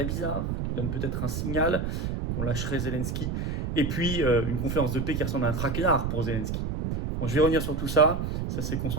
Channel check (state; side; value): noise; right; rumble, 2 dB below the sound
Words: bizarre, qui donne peut-être un signal qu'on lâcherait Zelensky. Et puis, une conférence de paix qui ressemble à un traquenard pour Zelensky. Bon, je vais revenir sur tout ça. Ça s'est